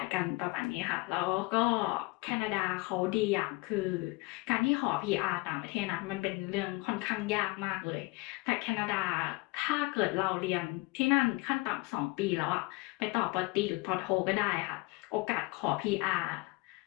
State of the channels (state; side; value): quieter; right; 24.8 dB